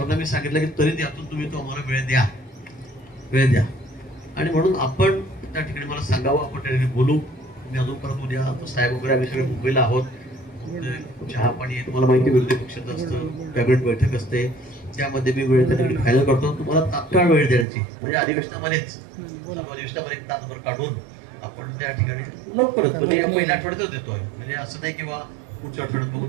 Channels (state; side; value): drops out; left; at 17.7 s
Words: मी सांगितलं की तरी त्यातून तुम्ही तो आम्हाला वेळ द्या. आणि म्हणून आपण त्या ठिकाणी मला सांगावं, आपण त्या ठिकाणी बोलू. मी अजून परत उद्या तर साहेब वगैरे आम्ही सगळे मुंबईला आहोत. चहा पाणी तुम्हाला माहिती, विरोधी पक्षाचं असतं, कॅबिनेट बैठक असते, त्यामध्ये मी वेळ त्या ठिकाणी फायनल करतो. तुम्हाला तात्काळ वेळ द्यायची, म्हणजे अधिवेशनामध्येच सर्व अधिवेशनामध्ये 1 तासभर काढून आपण त्या ठिकाणी लवकरच, म्हणजे या पहिल्या आठवड्यातच देतोय. म्हणजे असं नाही किंवा पुढच्या आठवड्यात बघू